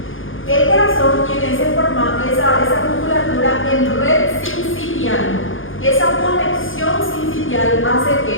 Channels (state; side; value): late; right; 0.58 ms